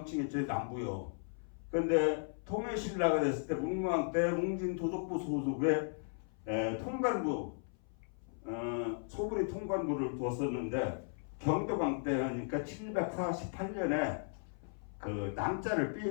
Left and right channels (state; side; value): silent; right; 54 dB below the other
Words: 남부요. 그런데 통일신라가 됐을 때 문무왕 때 웅진도독부 소속의 통관부 소부리 통관부를 두었었는데 경도강 때니까 748년에 그 남자를